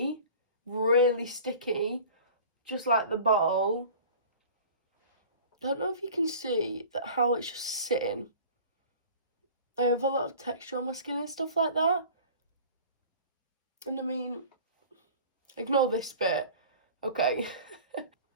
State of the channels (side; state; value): both; inverted; correlation -0.42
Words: Really sticky. Just like the bottle. I don't know if you can see that how it's just sitting. I have a lot of texture on my skin and stuff like that. And I mean, ignore this bit. Okay.